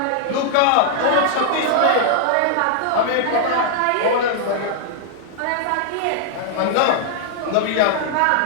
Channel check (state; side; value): different; both; correlation -0.01